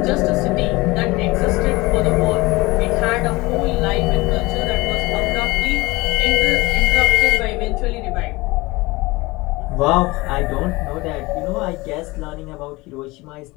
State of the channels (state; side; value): quieter; right; 22.2 dB